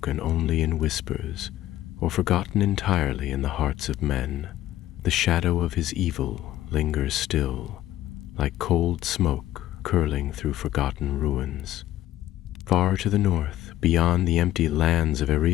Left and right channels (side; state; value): right; quieter; 13.8 dB